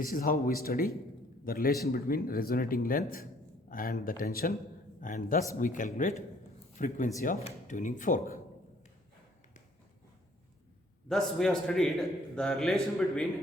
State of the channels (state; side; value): normal; both; correlation 0.60